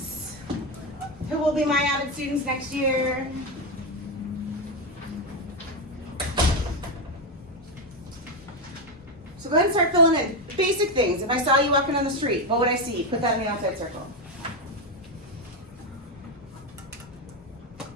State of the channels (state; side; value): normal; both; correlation 0.09